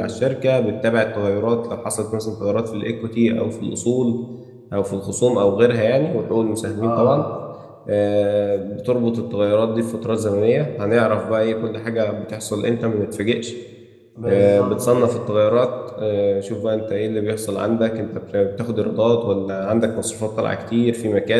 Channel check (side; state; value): both; identical; correlation 1.00